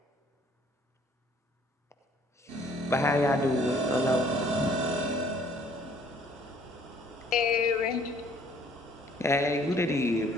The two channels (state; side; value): normal; both; correlation 0.59